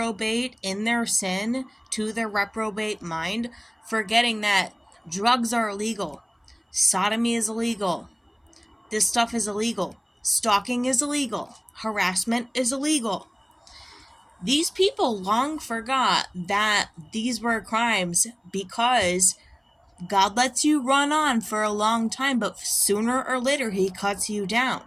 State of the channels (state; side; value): identical; both; correlation 1.00